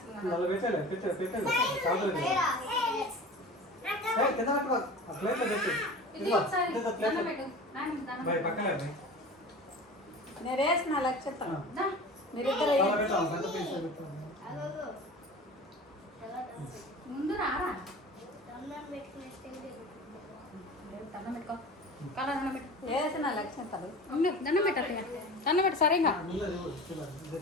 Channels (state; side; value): normal; both; correlation 0.36